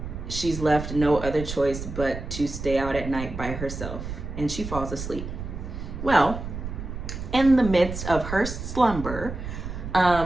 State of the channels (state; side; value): noise; right; rumble, 7 dB below the sound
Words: she's left no other choice but to stay out at night by herself, and she falls asleep. Well, in the midst of her slumber,